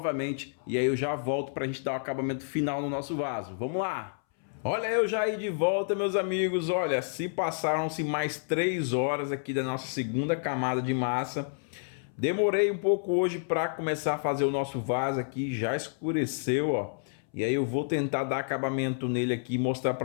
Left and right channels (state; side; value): silent; right; 58 dB below the other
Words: e aí eu já volto para a gente dar o acabamento final no nosso vaso. Vamos lá! Olha eu já aí de volta, meus amigos, olha, se passaram-se mais 3 horas aqui da nossa segunda camada de massa. Demorei um pouco hoje para começar a fazer o nosso vaso aqui, já escureceu, ó. E aí eu vou tentar dar acabamento nele aqui e mostrar